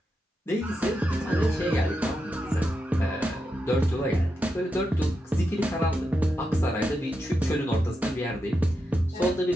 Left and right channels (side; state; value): both; normal; correlation 0.86